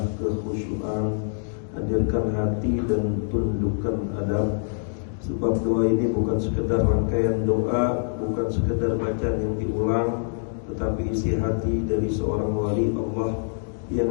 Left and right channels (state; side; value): silent; right; digital silence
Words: kekhusyuan, hadirkan hati dan tundukkan adab. Sebab doa ini bukan sekedar rangkaian doa, bukan sekedar bacaan yang diulang, tetapi isi hati dari seorang wali Allah yang